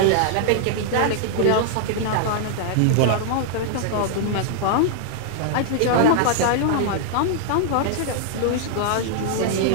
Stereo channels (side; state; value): both; different; correlation -0.01